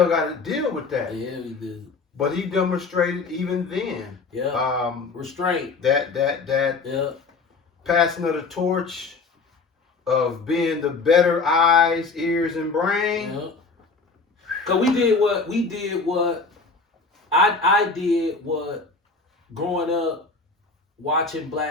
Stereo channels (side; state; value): right; quieter; 4.2 dB